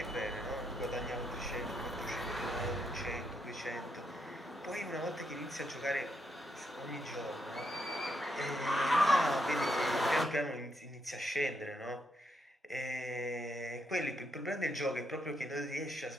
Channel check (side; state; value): both; normal; correlation 0.79